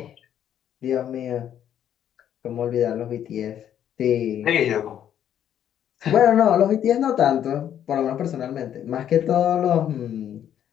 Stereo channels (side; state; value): right; quieter; 10.1 dB